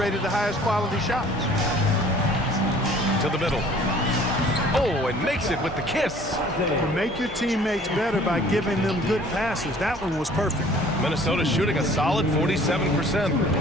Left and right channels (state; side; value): normal; both; correlation 0.53